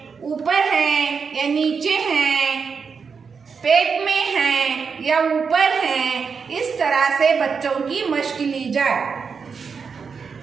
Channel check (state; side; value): quieter; left; 5.7 dB